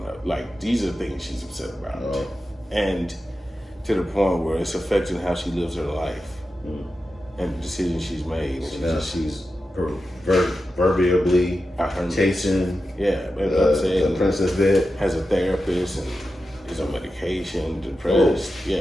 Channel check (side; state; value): both; normal; correlation 0.91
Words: up. Like, these are things she's upset about. Oh. And to the point where it's affecting how she lives her life and the decisions she's made. And she's proverbially chasing the princess bed. Has a therapist and is on medication, depressed. Oh.